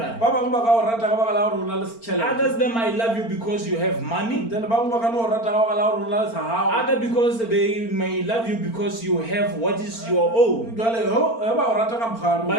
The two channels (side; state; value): right; late; 4.4 ms